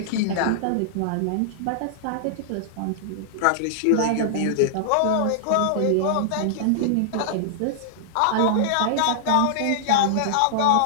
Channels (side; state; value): both; different; correlation -0.01